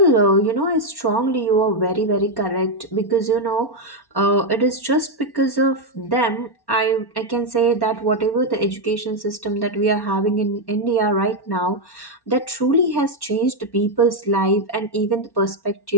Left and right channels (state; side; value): late; right; 1.1 ms